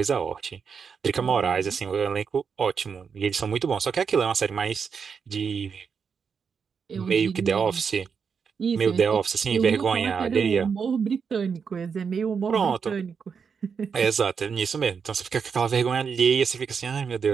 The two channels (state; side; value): quieter; left; 6.2 dB